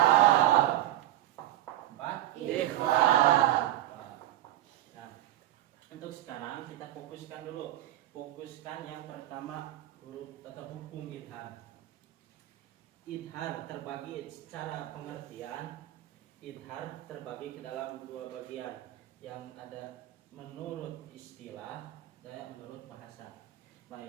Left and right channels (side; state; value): left; quieter; 14.2 dB